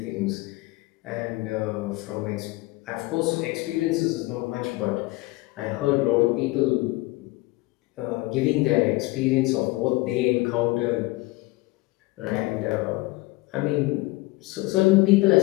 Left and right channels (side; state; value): right; quieter; 21.6 dB